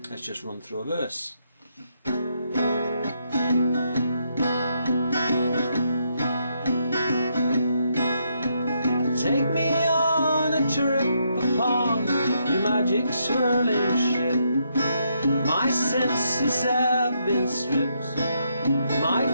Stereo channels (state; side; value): inverted; both; correlation -0.77